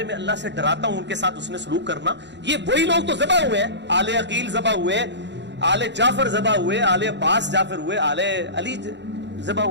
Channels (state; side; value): late; left; 0.52 ms